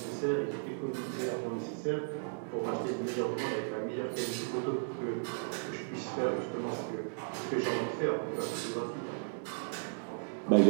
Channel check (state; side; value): silent; left; digital silence